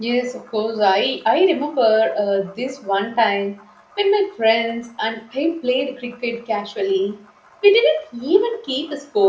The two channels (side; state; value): both; identical; correlation 1.00